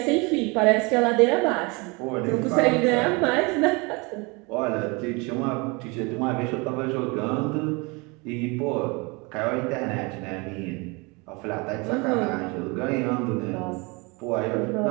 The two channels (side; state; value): left; quieter; 28.1 dB